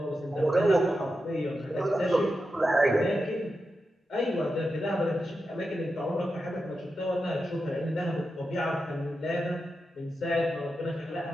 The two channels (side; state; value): both; normal; correlation 0.89